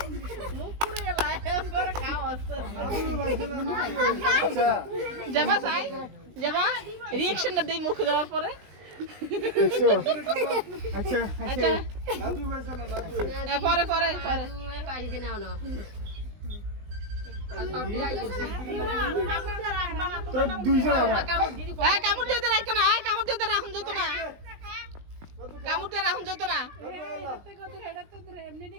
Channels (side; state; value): left; late; 20 ms